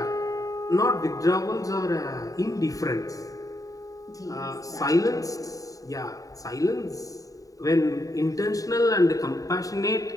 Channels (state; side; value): late; right; 0.17 ms